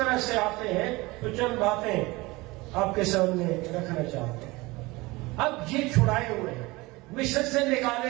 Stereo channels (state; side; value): quieter; left; 22.2 dB